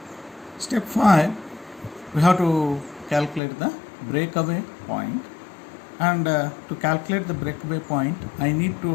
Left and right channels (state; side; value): drops out; right; at 3.4 s